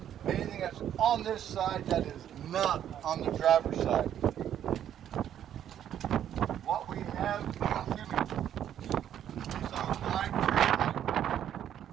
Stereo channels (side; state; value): left; quieter; 10.3 dB